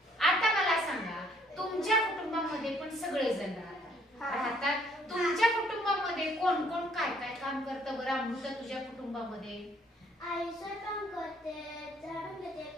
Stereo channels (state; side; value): normal; both; correlation 0.64